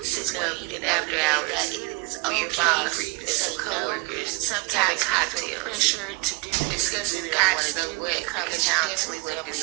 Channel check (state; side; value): quieter; left; 26.9 dB